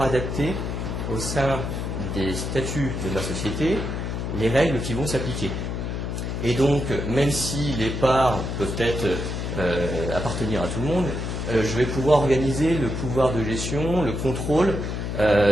adapter au sein des statuts de ma société les règles qui vont s'appliquer. Et donc, même si les parts peuvent être appartenir à tout le monde, je vais pouvoir organiser le pouvoir de gestion, le contrôle,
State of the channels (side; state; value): left; noise; hum, 3 dB below the sound